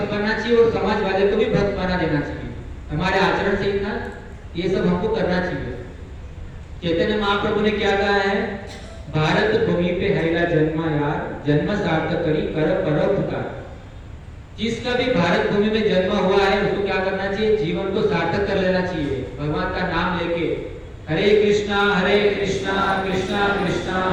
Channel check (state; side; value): identical; both; correlation 1.00